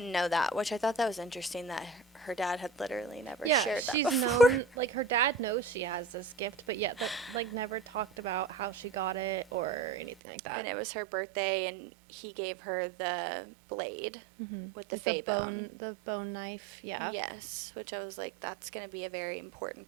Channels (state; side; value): drops out; left; at 10.1 s